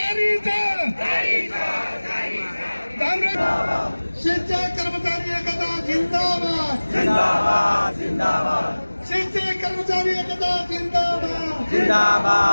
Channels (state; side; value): inverted; both; correlation -1.00